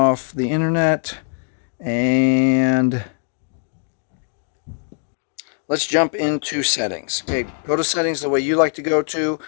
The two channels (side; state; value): right; silent; 65 dB below the other